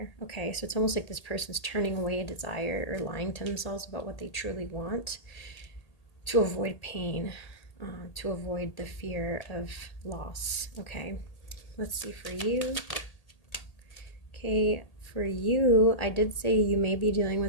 Okay, so it's almost like this person's turning away a desire or lying to themselves about what they truly want to avoid pain, to avoid the fear of loss. Okay, let's see for you. Okay, for you, I did say you may be dealing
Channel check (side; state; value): right; late; 1.8 ms